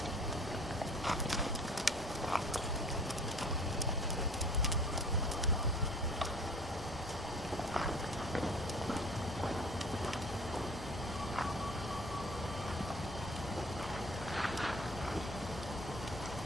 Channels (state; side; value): normal; both; correlation 0.47